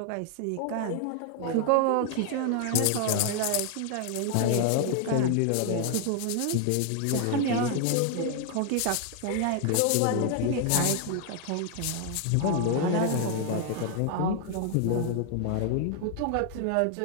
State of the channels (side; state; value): both; different; correlation 0.00